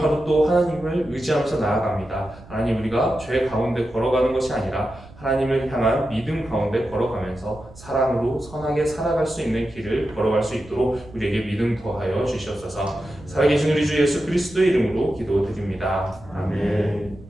하루 또 하나님을 의지하면서 나아갑니다. 하나님, 우리가 죄 가운데 걸어가는 것이 아니라 하나님을 향한 믿음 가운데 걸어가면서 사랑으로 선하게 살아갈 수 있는 길을 걸어갈 수 있도록 우리에게 믿음 더하여 주시옵소서. 살아계신 우리 주 예수 그리스도의 이름으로 기도드립니다. 아멘.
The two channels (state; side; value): noise; right; rumble, 20 dB below the sound